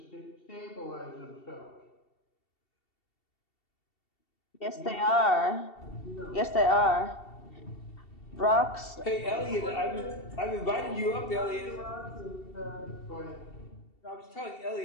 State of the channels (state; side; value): late; right; 2.7 ms